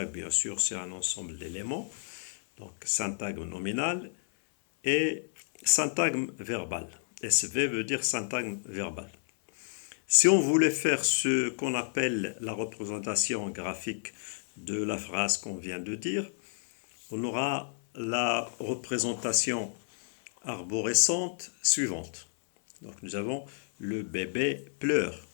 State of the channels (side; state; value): right; silent; 57 dB below the other